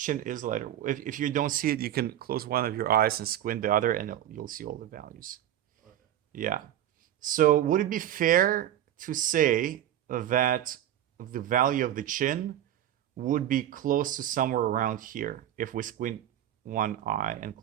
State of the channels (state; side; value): quieter; left; 11.7 dB